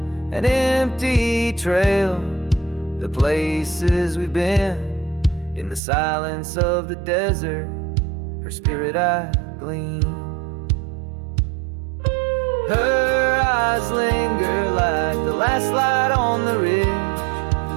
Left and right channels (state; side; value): drops out; left; at 5.8 s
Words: an empty trail, the places we've been, in the silence of the desert, her spirit I glean. Her eyes linger like the last light on the ridge,